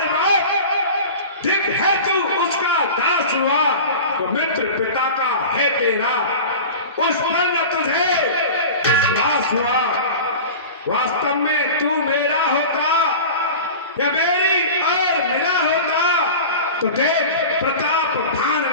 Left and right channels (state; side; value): inverted; both; correlation -0.34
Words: बार ठीक है तू उसका दास हुआ, तो मित्र पिता का है तेरा, उस पर न तुझे विश्वास हुआ। वास्तव में तू मेरा होता या मेरी और मिला होता, तो देख प्रताप भान